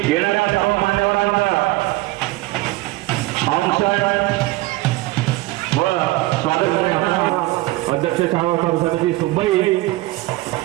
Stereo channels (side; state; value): left; quieter; 19.3 dB